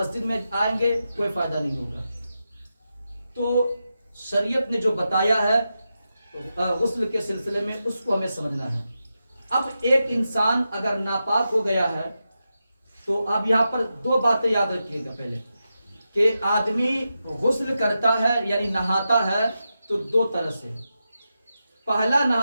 میں آئیں گے، کوئی فائدہ نہیں ہوگا. تو شریعت نے جو بتایا ہے غسل کے سلسلے میں اس کو ہمیں سمجھنا ہے. اب ایک انسان اگر ناپاک ہو گیا ہے تو اب یہاں پر 2 باتیں یاد رکھیے گا. پہلے کہ آدمی غسل کرتا ہے یعنی نہاتا ہے تو 2 طرح سے. پہلا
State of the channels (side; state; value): both; inverted; correlation -0.89